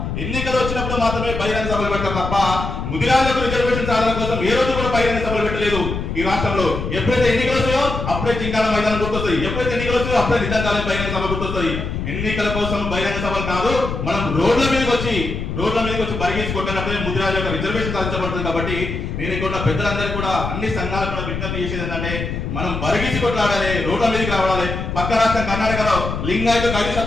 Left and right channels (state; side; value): noise; left; rumble, 4 dB below the sound